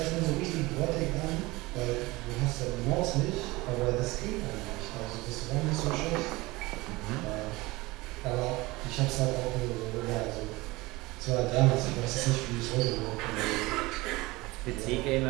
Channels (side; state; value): left; quieter; 21.5 dB